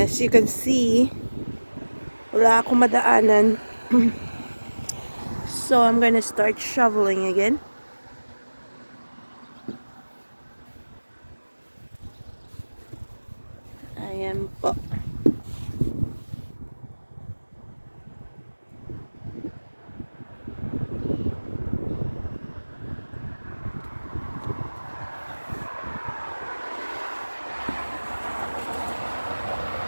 as you can see, wala akong madaanan. So I'm gonna start shoveling again. Ayan po.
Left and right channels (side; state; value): both; inverted; correlation -1.00